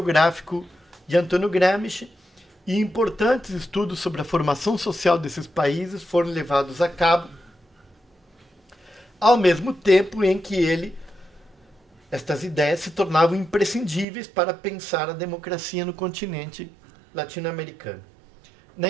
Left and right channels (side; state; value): left; drops out; at 14.1 s